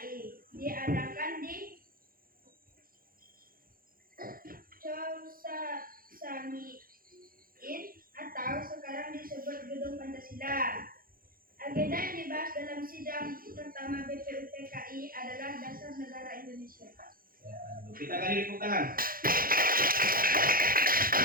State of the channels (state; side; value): late; left; 0.42 ms